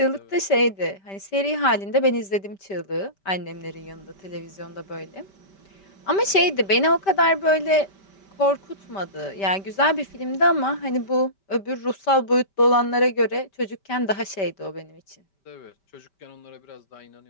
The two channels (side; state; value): right; late; 5.1 ms